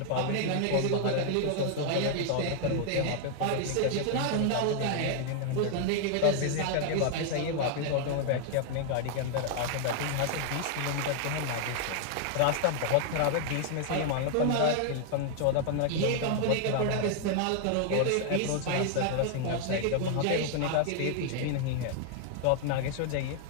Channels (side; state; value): both; different; correlation 0.00